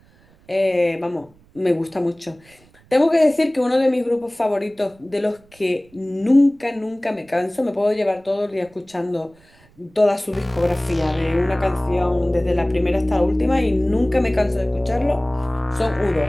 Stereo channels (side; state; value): right; noise; rumble, 29 dB below the sound